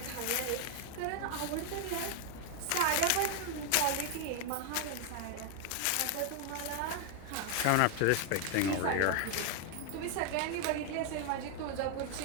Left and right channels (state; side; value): different; both; correlation 0.00